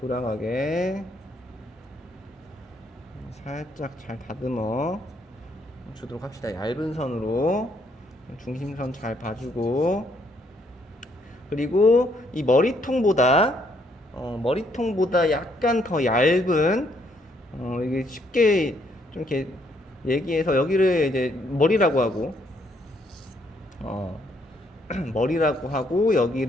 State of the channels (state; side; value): normal; both; correlation 0.70